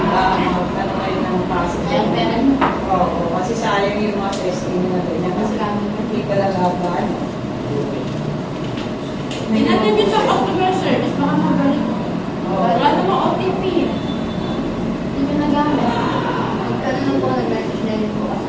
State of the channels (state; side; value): identical; both; correlation 1.00